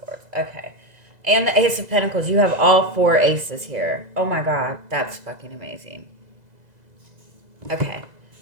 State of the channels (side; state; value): left; late; 2.0 ms